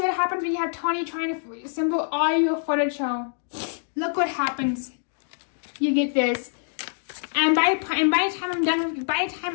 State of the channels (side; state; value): right; silent; digital silence